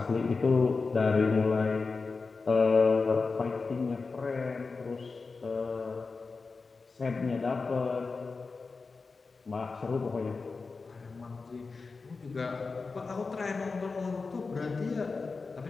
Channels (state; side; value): quieter; right; 4.3 dB